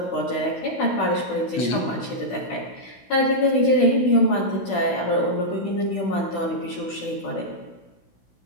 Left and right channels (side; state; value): right; late; 16 ms